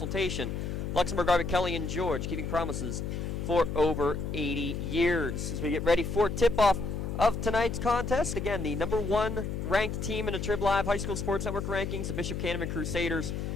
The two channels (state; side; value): noise; left; hum, 4 dB below the sound